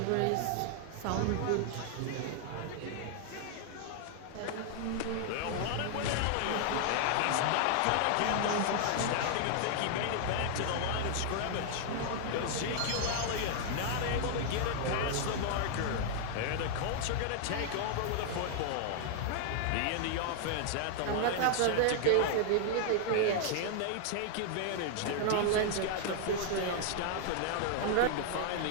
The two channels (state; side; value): different; both; correlation -0.01